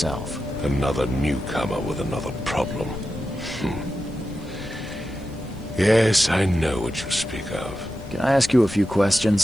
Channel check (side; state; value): left; noise; hiss, 29 dB below the sound